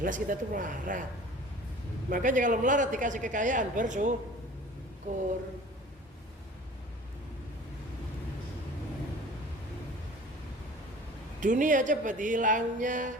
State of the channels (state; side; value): normal; both; correlation 0.44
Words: kita tuh melarat. Makanya kalau melarat dikasih kekayaan, bersyukur. Dunia cepat hilangnya.